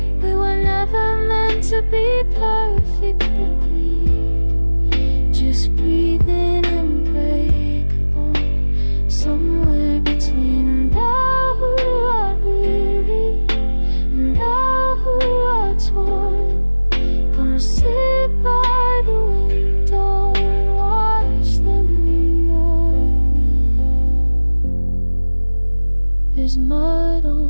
We were never meant to be perfectly clean, just breathing unbreakable, somewhere between. And now who are weary, and now who are torn, gonna sit by the window and watch the moon morning. There's mud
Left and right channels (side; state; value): both; inverted; correlation -1.00